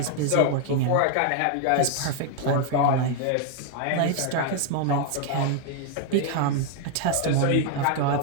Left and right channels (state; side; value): different; both; correlation 0.00